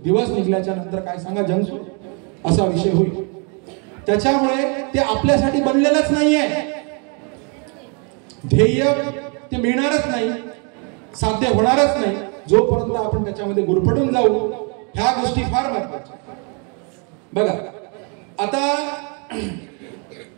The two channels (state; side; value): quieter; left; 36.3 dB